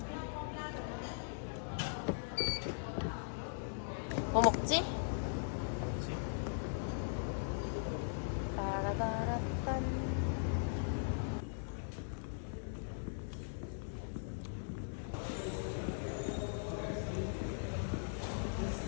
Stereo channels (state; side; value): silent; right; digital silence